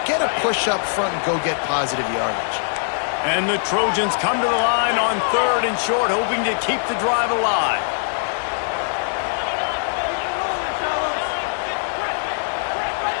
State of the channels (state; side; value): silent; right; digital silence